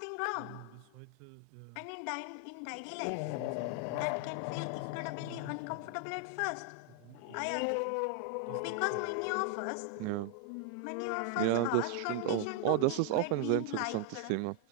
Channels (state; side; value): different; both; correlation 0.00